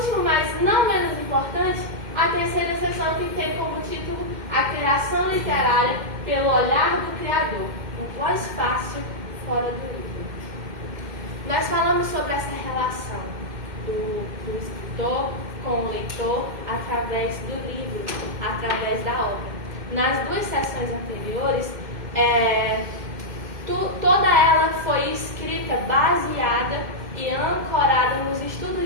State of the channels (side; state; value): left; late; 2.1 ms